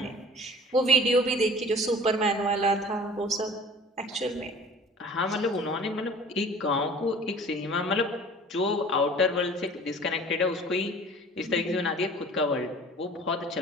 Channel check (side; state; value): both; normal; correlation 0.45